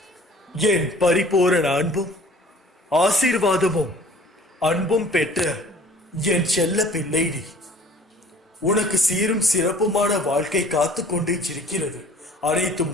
என் பரிபூரண அன்பும் ஆசீர்வாதமும் அன்பும் பெற்ற என் செல்ல பிள்ளை நீ. உனக்கு சீரும் சிறப்புமான வாழ்க்கை காத்து கொண்டே இருக்கிறது. அனைத்தும்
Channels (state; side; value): normal; both; correlation 0.51